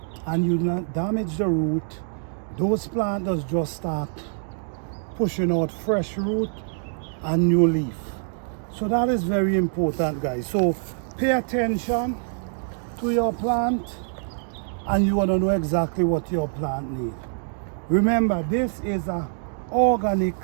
and you not damage the root, those plants just start pushing out fresh root and new leaf. So that is very important, guys. So pay attention to your plant and you want to know exactly what your plant needs. Remember, this is an organic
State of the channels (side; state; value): left; silent; digital silence